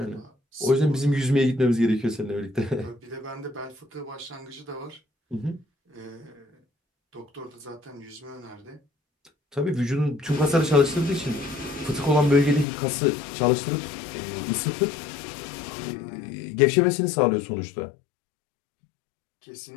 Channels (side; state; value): right; drops out; at 12.7 s